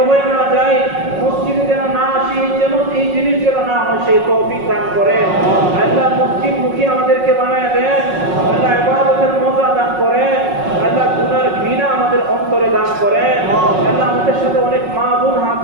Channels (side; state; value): left; late; 5.4 ms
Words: হয়ে না যাই, মসজিদে যেন না আসি, যেন এই জিনিস যেন না হয় সেই তৌফিক দান করেন। আল্লাহ মসজিদ মুখী আমাদেরকে বানায় দেন। আল্লাহ ইবাদতের মজা দান করেন। আল্লাহ গুনার ঘৃণা আমাদের অন্তরে দান করেন। আল্লাহ আমাদের সাথে অনেক মা বোন হাত